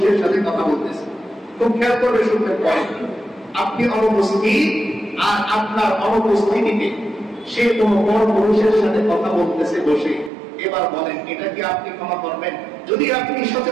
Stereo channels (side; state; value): left; drops out; at 10.3 s